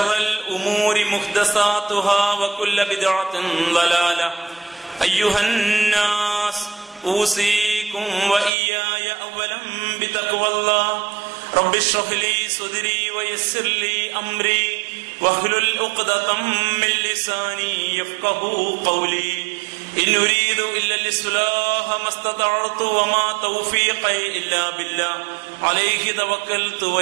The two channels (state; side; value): drops out; left; at 8.5 s